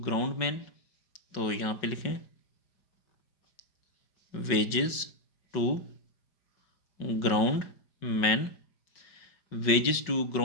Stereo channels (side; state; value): right; late; 5.4 ms